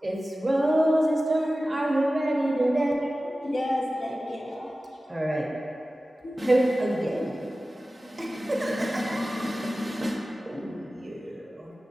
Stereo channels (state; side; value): normal; both; correlation 0.96